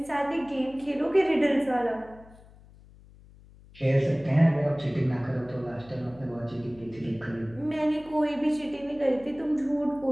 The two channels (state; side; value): noise; left; hum, 23 dB below the sound